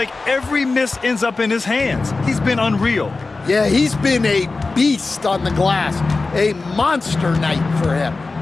every miss ends up in his hands. He's been unreal. Yeah, he's been a beast on the glass. A monster night for him.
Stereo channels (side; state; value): right; quieter; 3.7 dB